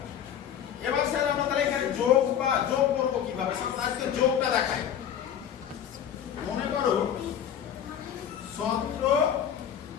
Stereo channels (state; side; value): quieter; right; 9.3 dB